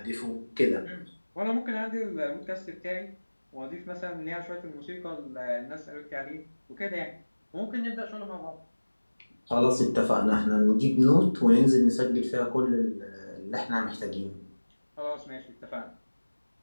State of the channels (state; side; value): inverted; both; correlation -1.00